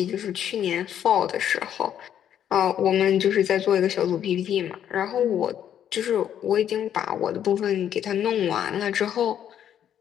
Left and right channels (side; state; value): right; quieter; 9.9 dB